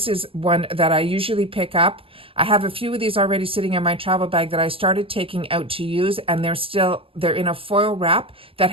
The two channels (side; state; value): left; late; 0.27 ms